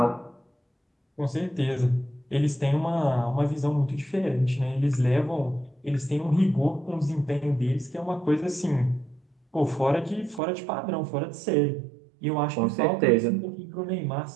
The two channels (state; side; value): drops out; left; at 10.4 s